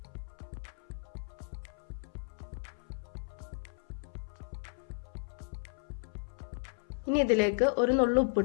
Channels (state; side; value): silent; right; 55 dB below the other